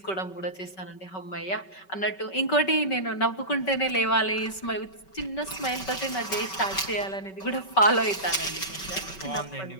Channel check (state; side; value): late; right; 5.3 ms